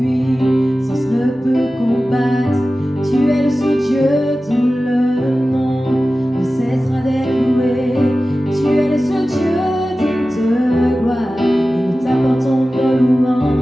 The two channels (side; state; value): both; normal; correlation 0.95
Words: ne peut combattre. Tu es le seul Dieu dont le nom ne cessera d'être loué. Tu es le seul Dieu digne de gloire et nous t'apportons nos